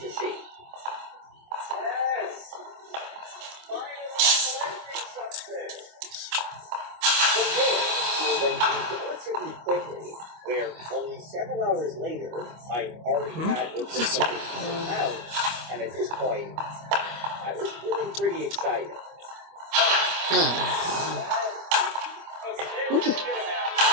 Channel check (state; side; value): late; left; 25 ms